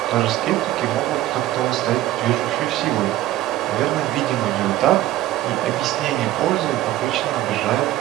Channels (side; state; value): left; quieter; 14.7 dB